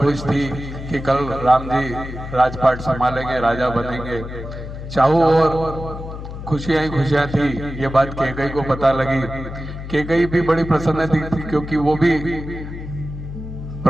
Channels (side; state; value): left; noise; hum, 9 dB below the sound